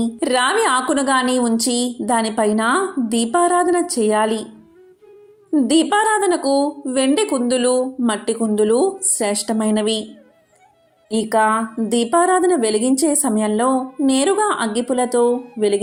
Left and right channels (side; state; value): both; identical; correlation 1.00